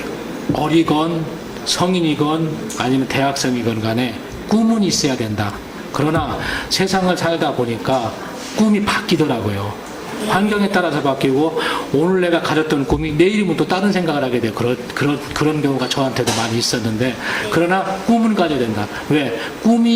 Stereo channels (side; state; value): both; identical; correlation 1.00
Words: 어리건 성인이건 아니면 대학생이건 간에 꿈은 있어야 된다. 그러나 세상을 살다 보니까 꿈이 바뀌더라고요. 환경에 따라서 바뀌고 오늘 내가 가졌던 꿈이 내일이면 또 다른 생각을 하게 돼요. 그런 경우가 저한테도 많이 있었는데 그러나 꿈은 가져야 된다. 왜?